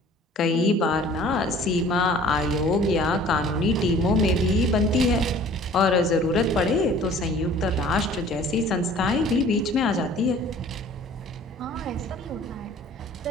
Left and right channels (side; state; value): both; normal; correlation 0.50